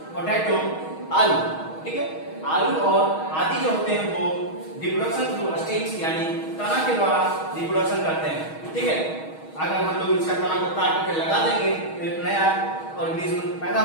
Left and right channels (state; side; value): late; right; 6.3 ms